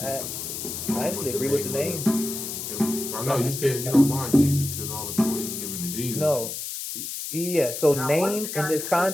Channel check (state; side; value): noise; left; hiss, 6 dB below the sound